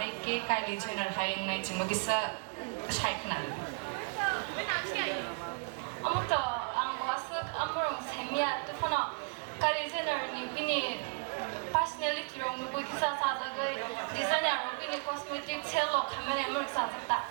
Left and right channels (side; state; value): left; silent; 55 dB below the other